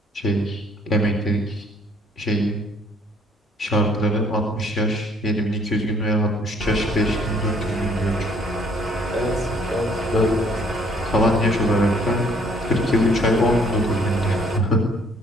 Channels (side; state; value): both; normal; correlation 0.62